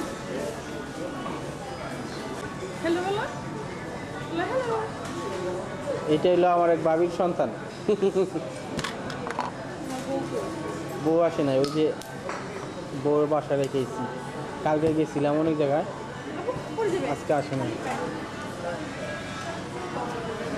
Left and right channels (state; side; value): identical; both; correlation 1.00